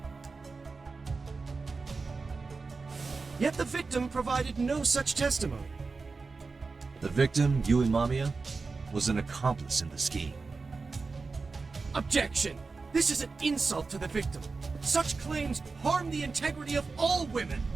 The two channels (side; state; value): left; quieter; 4.2 dB